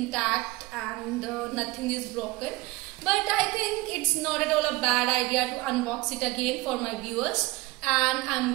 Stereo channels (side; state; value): left; quieter; 20.9 dB